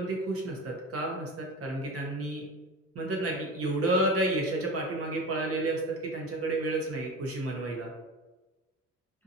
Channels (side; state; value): both; normal; correlation 0.30